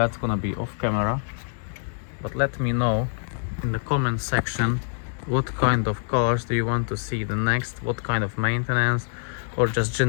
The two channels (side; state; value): right; silent; digital silence